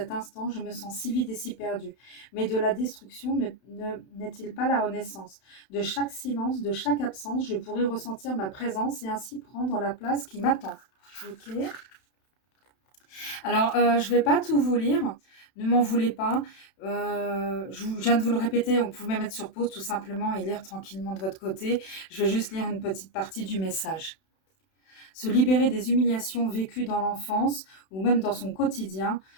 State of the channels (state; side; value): late; right; 31 ms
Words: instant, je me sens si vide et si perdue. Mais de la destruction n'est-il pas la renaissance? De chaque silence, de chaque absence, je pourrais ressentir ma présence et ainsi prendre la place qui m'attend. Ok. Alors, je ne vais pas tout vous lire. Ne m'en voulez pas. Je viens de vous le répéter, on pouvait mettre sur pause tout simplement et lire tranquillement de votre côté. Je vais juste lire une petite partie du message. Se libérer des humiliations vécues dans l'enfance ou même dans son quotidien